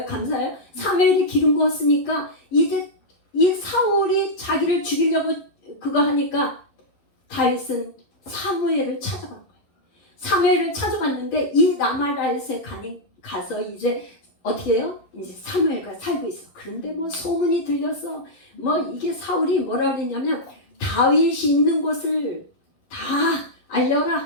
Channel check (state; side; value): late; right; 11 ms